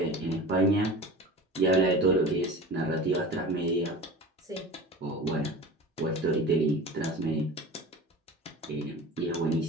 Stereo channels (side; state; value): both; normal; correlation 0.35